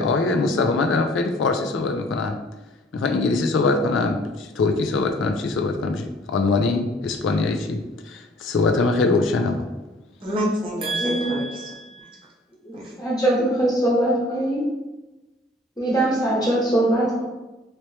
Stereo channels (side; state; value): both; normal; correlation 0.54